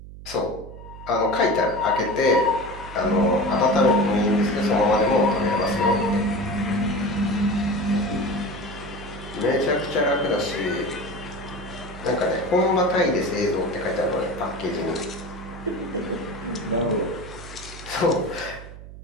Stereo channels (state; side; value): noise; right; hum, 15 dB below the sound